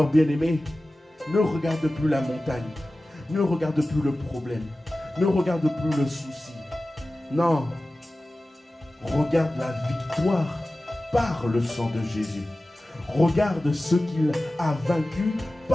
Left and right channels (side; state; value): both; normal; correlation 0.96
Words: bien-aimé, ne regarde plus la montagne, ne regarde plus le problème, ne regarde plus le souci. Non, regarde la victoire par le sang de Jésus. Regarde ce qu'il a vaincu